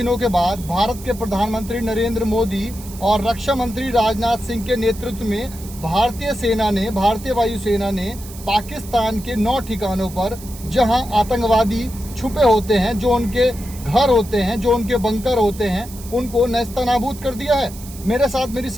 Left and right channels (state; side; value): noise; right; hiss, 17 dB below the sound